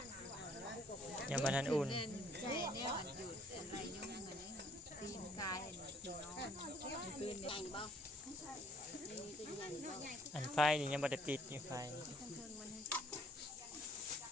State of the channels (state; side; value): normal; both; correlation 0.61